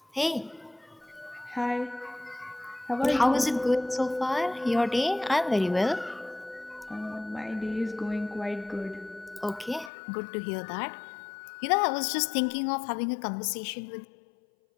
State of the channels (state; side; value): drops out; right; at 9.9 s